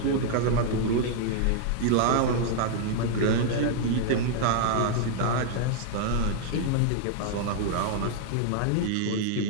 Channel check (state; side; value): different; both; correlation -0.01